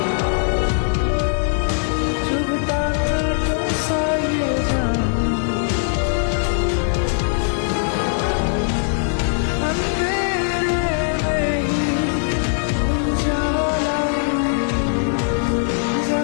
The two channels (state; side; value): silent; right; 66 dB below the other